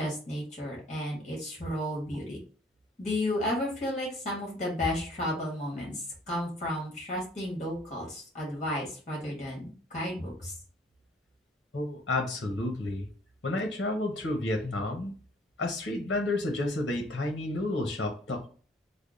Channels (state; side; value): normal; both; correlation 0.57